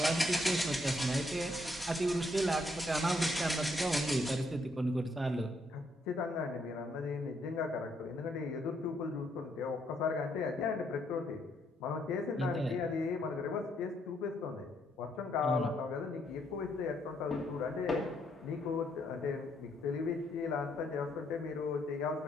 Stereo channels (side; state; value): both; normal; correlation 0.73